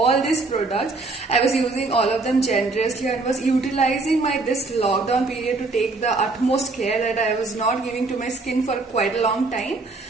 these products. I was using all of them generously and was utilizing this lockdown period to take the utmost care that I was not giving to my skin for quite a long time.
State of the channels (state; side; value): quieter; left; 3.5 dB